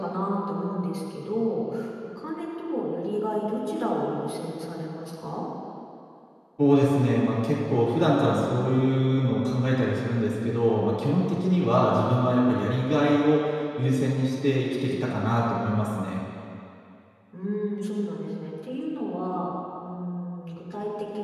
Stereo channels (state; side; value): identical; both; correlation 1.00